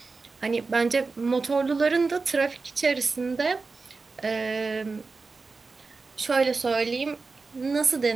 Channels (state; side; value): quieter; left; 4.2 dB